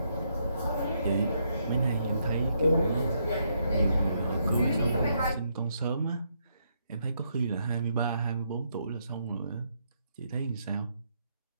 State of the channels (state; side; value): inverted; both; correlation -0.76